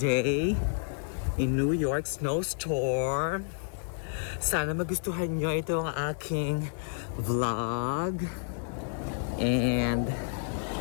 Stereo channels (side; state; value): right; silent; digital silence